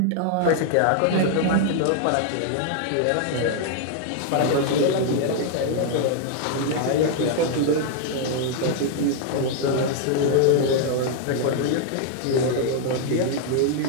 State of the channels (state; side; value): different; both; correlation 0.00